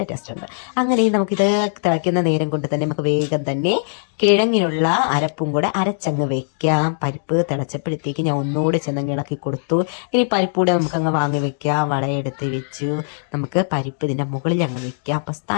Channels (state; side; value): silent; right; digital silence